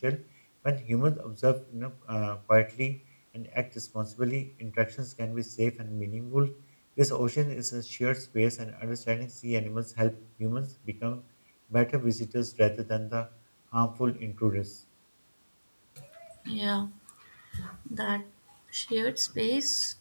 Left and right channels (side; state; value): both; inverted; correlation -1.00